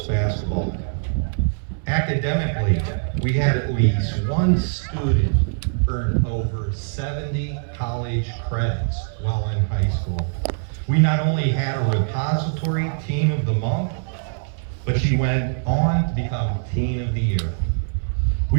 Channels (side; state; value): left; silent; 63 dB below the other